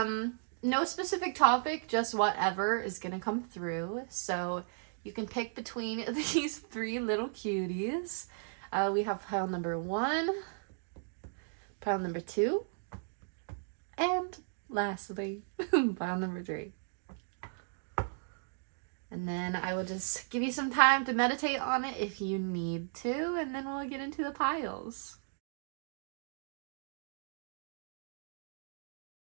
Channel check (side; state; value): left; silent; digital silence